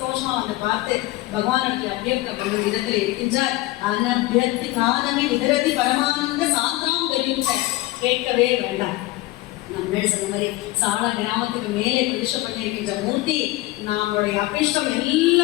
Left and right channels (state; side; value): quieter; right; 18.4 dB